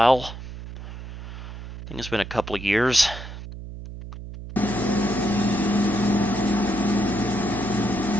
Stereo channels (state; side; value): noise; right; hum, 11 dB below the sound